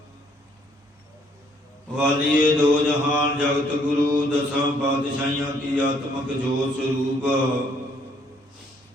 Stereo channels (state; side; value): normal; both; correlation 0.66